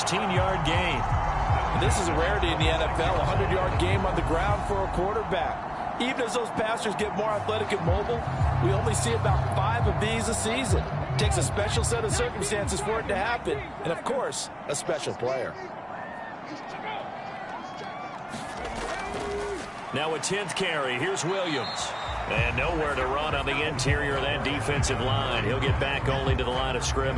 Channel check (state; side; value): identical; both; correlation 1.00